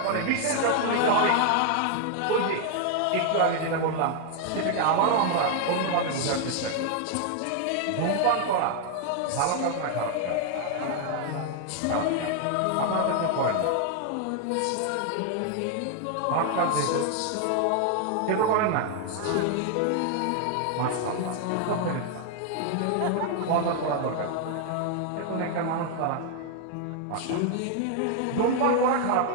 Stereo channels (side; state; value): both; different; correlation 0.00